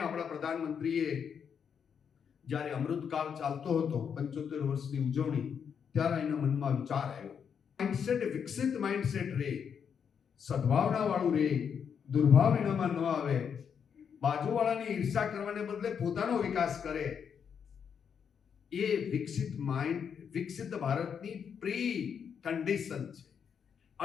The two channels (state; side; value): quieter; right; 7.2 dB